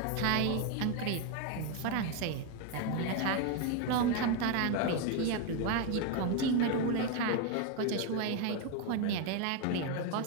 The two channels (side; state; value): both; different; correlation 0.02